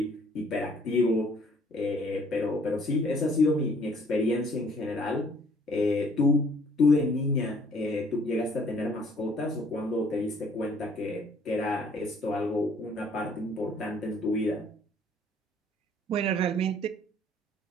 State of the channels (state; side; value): normal; both; correlation 0.59